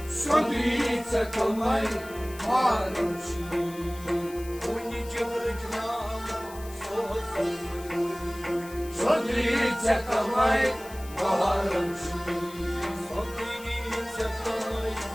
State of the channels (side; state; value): left; noise; hiss, 18 dB below the sound